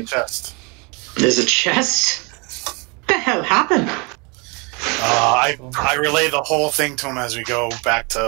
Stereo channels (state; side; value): quieter; left; 30.5 dB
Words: the chest. There's a chest? What the hell happened? I relay the whole thing to him as we go back